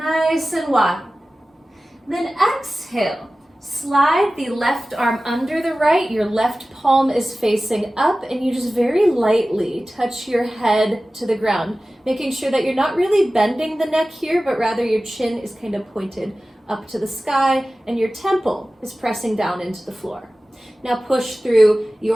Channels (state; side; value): normal; both; correlation 0.96